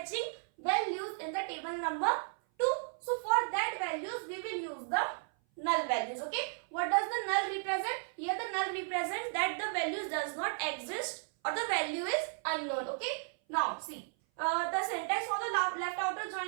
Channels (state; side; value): silent; left; 55 dB below the other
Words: values in the table number 2. So for that values we will use the null values. Okay, what does the null represent? Here the null represents that the values does not exist or the value is unknown. Okay, now see, the syntax for the left outer